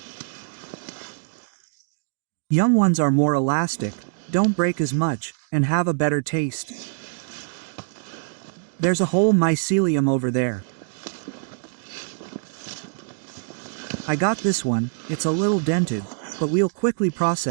Young ones are more elastic, don't break as much, and have a better taste. There's a whole mycelium over there. I got this one. It's a little dented, but we'll quickly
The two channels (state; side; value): silent; left; digital silence